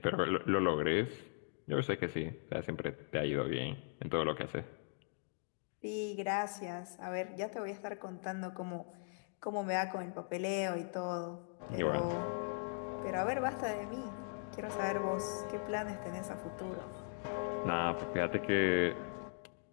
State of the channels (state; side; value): silent; right; digital silence